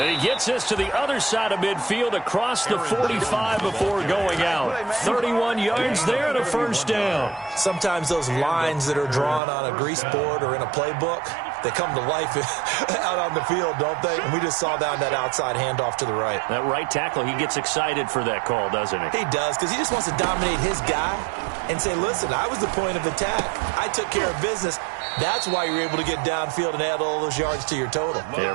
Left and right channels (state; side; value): drops out; left; at 9.4 s